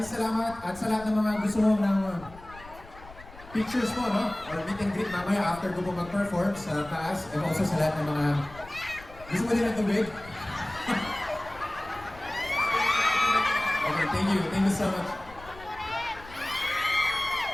salamat at sa lahat ng mga gusto mo ng pictures mo, no? Or meet and greet mamaya after ko po mag-perform sa taas and also sa lahat ng mga gusto mo din ng tubig. Okay, thank you so much.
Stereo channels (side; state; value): left; noise; rumble, 19 dB below the sound